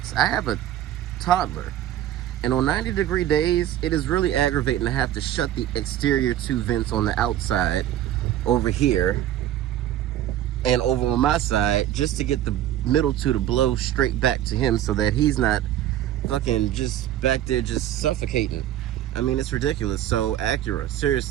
I have a toddler, and on 90-degree days, it is really aggravating to have to shut the exterior 2 vents on the outside over here and over on my side, just to get the middle 2 to blow straight back to him so that he's not fucking just back there just suffocating. I mean, it's ridiculous. So Acura,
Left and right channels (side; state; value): left; quieter; 12.1 dB